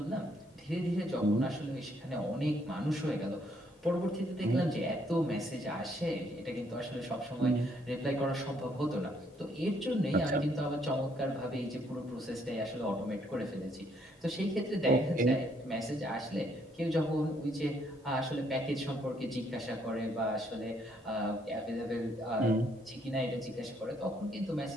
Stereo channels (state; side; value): normal; both; correlation 0.69